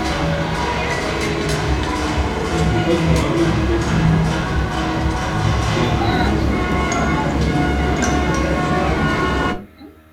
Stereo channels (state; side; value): identical; both; correlation 1.00